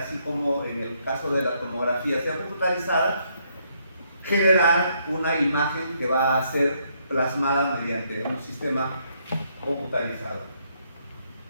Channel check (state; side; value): inverted; both; correlation -0.73